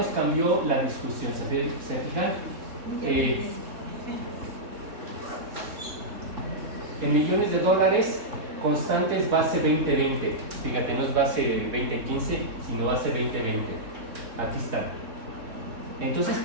cambió la discusión. ¿Se fijan? En millones de dólares, constantes base 2020. Fíjate, no es base 2015, sino base 2020. Aquí está. Entonces,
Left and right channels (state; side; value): late; left; 3.6 ms